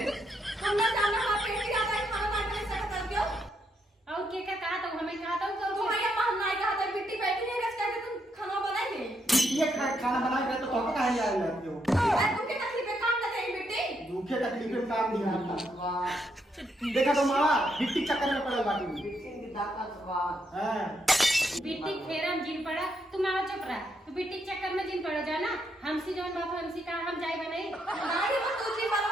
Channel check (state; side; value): normal; both; correlation 0.78